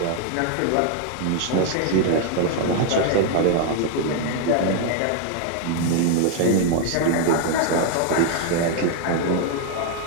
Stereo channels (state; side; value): different; both; correlation 0.00